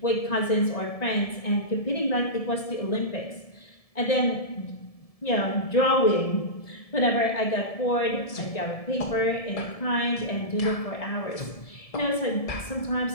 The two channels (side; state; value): right; late; 1.7 ms